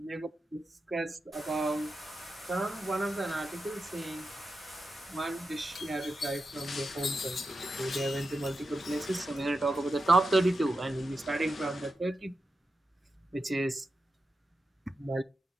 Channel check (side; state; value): both; normal; correlation 0.89